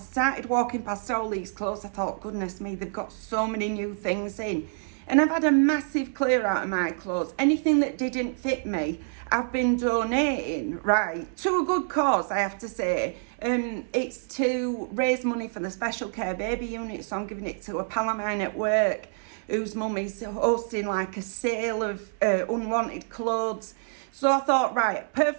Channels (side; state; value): left; silent; 60 dB below the other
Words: walking past all these clothes. I thought, goodness me, they've got so many new things in. And I've had a massive clear out of my clothes. Anything that didn't fit me, I've been donating, right, to a good cause, I have to say. It's to raise money for the special care baby unit. So I'm giving it to a pal of mine at work whose mum is hosting like a sale of unwanted clothes. So I thought, right,